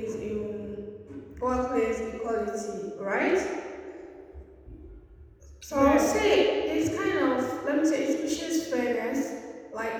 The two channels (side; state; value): both; identical; correlation 1.00